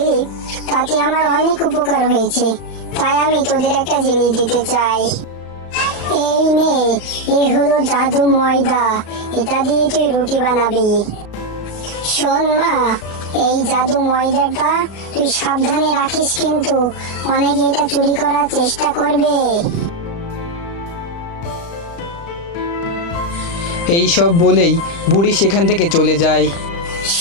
তাতে আমার অনেক উপকার হয়েছে, তাই আমি তোদের একটা জিনিস দিতে চাই। এই নে, এই হলো জাদু ময়দা, এটা দিয়ে তুই রুটি বানাবি। শোন মা, এই জাদু ময়দাটা তুই সাবধানে রাখিস, কিন্তু অনেকে এটা চুরি করার চেষ্টা করবে। এই সব বলেই বুড়ি সেখান থেকে চলে যায়।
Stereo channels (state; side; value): late; right; 35 ms